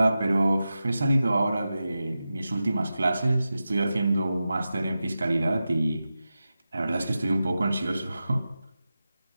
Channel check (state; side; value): inverted; both; correlation -0.93